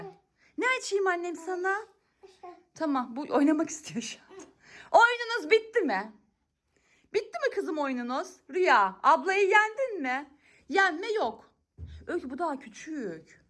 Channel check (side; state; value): both; identical; correlation 1.00